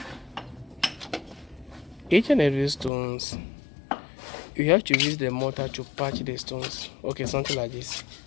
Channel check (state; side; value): drops out; right; at 2.9 s